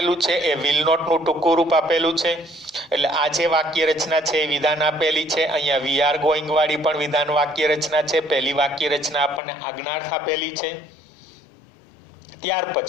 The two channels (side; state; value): right; drops out; at 9.4 s